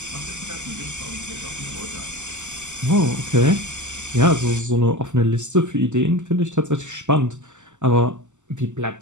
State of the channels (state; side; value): late; left; 0.84 ms